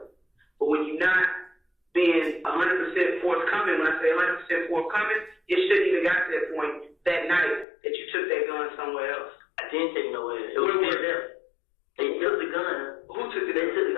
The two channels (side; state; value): right; drops out; at 7.7 s